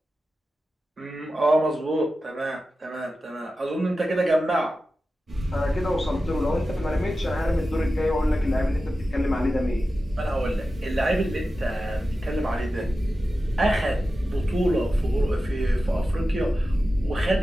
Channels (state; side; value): normal; both; correlation 0.93